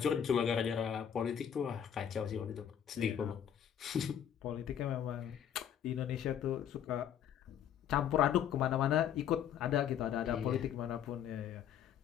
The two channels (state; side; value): quieter; right; 9.3 dB